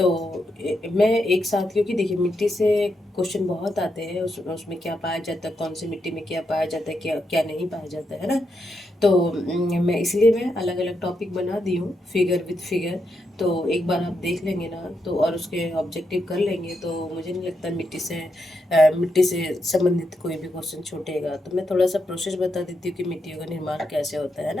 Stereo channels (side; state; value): both; normal; correlation 0.83